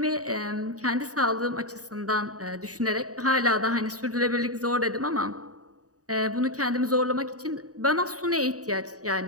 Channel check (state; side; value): late; left; 0.67 ms